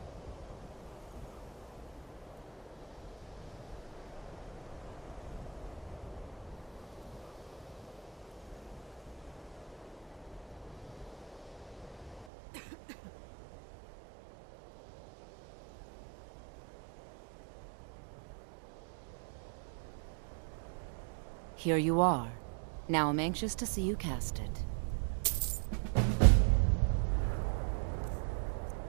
Here you are. Now I'm anxious to see you cast it.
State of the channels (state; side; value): drops out; left; at 12.2 s